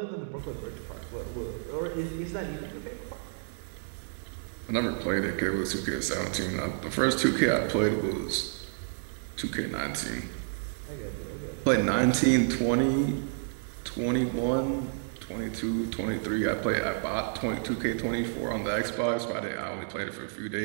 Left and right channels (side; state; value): left; silent; digital silence